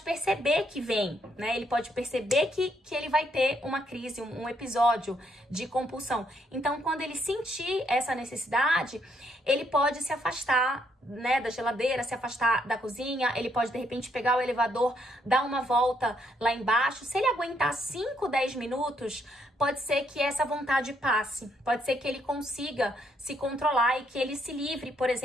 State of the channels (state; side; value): normal; both; correlation 0.73